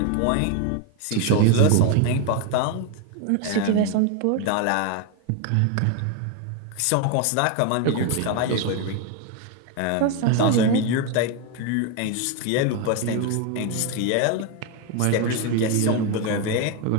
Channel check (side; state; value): both; different; correlation 0.01